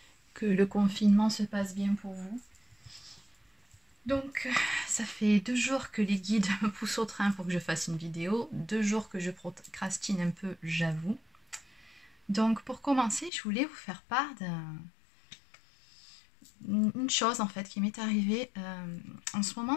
que le confinement se passe bien pour vous. Donc, ça fait 2 jours que les guides me poussent au train pour que je fasse une vidéo, 2 jours que je procrastine un peu, j'avoue. Donc, pour commencer, je voulais vous faire part d'une chose en fait qui m'est arrivée. En ce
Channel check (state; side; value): drops out; right; at 13.3 s